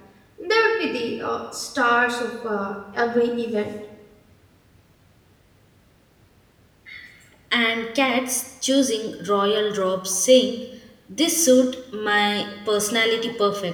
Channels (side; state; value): both; identical; correlation 1.00